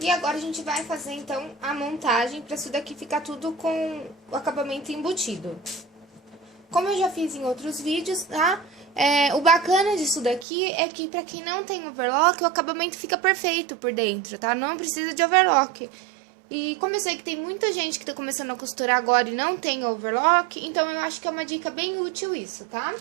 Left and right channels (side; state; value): left; drops out; at 10.5 s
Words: agora a gente vai fazer, então, a montagem pra isso daqui ficar tudo com o acabamento embutido. Como eu já fiz em outros vídeos, tá? O bacana disso daqui é que pra quem não tem overlock, o acabamento fica perfeito por dentro, tá? Não precisa de overlock. E como eu sei que tem muita gente que tá começando a costurar agora e não tem overlock, então eu acho que é uma dica bem útil isso, tá?